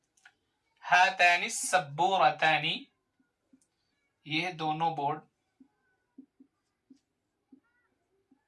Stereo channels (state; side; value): identical; both; correlation 1.00